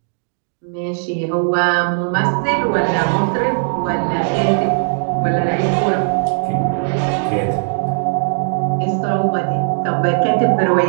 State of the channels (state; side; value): silent; left; digital silence